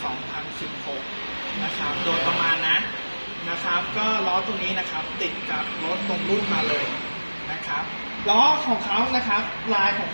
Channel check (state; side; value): inverted; both; correlation -1.00